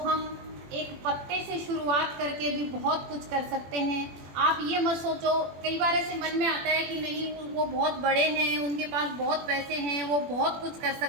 एक पत्ते से शुरुआत करके भी बहुत कुछ कर सकते हैं। आप ये मत सोचो, कई बार ऐसे मन में आता है कि नहीं वो बहुत बड़े हैं, उनके पास बहुत पैसे हैं, वो बहुत कुछ कर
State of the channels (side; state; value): left; late; 21 ms